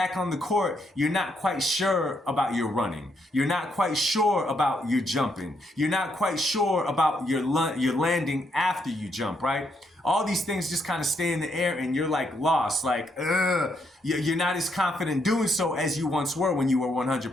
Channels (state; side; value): normal; both; correlation 0.76